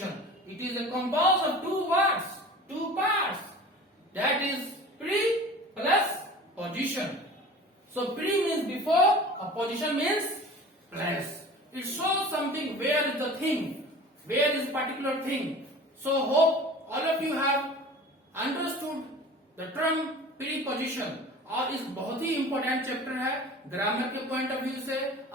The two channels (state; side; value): normal; both; correlation 0.40